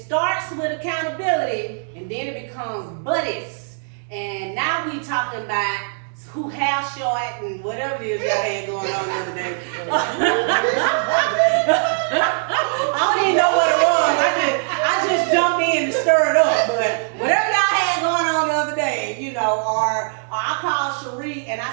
with accountability, and then it becomes buddies. And now we talking about who house short and whatever it is y'all had going on the other day. I don't even know what it was. I just jumped in and stirred up. But whatever y'all had going on the other day, or I called Cherie and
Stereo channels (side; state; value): left; silent; digital silence